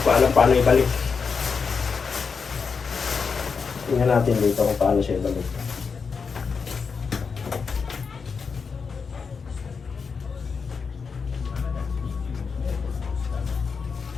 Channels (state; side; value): quieter; right; 5.4 dB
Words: pa alam paano ibalik. Tingnan natin dito kung paano siya balik.